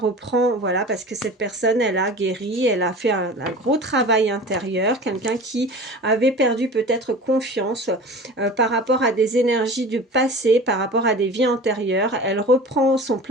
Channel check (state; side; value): normal; both; correlation 0.37